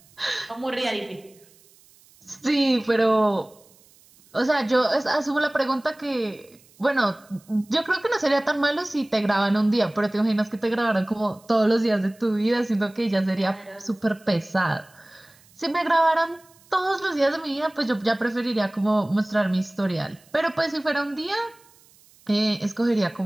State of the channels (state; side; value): noise; right; hiss, 29 dB below the sound